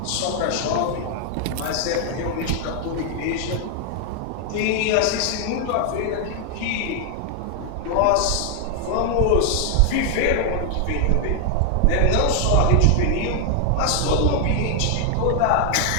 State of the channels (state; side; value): different; both; correlation 0.00